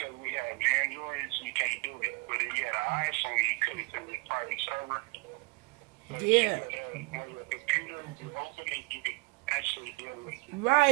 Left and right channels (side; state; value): left; quieter; 30.4 dB